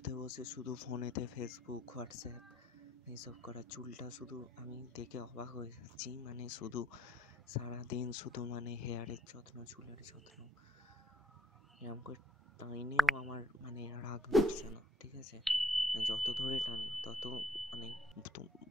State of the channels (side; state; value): both; normal; correlation 0.68